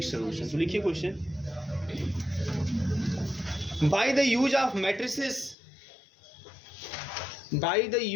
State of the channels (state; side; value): drops out; right; at 5.6 s